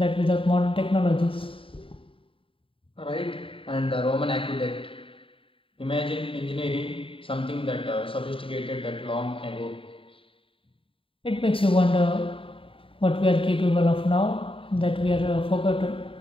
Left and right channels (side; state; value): right; late; 0.26 ms